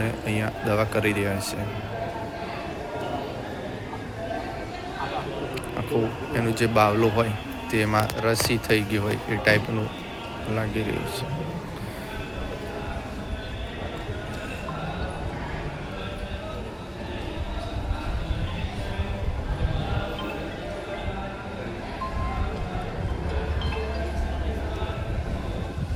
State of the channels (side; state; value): both; identical; correlation 1.00